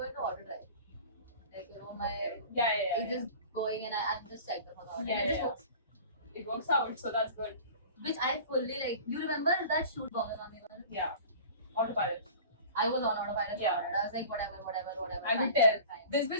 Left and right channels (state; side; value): inverted; both; correlation -0.40